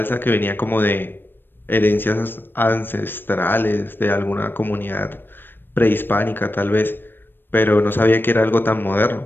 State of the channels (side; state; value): right; late; 0.097 ms